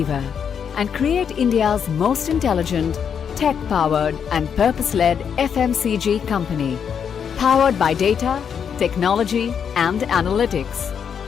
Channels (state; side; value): quieter; right; 7.4 dB